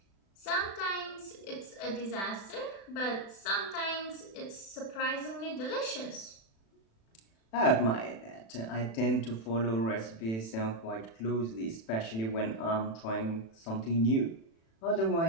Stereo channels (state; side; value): late; right; 36 ms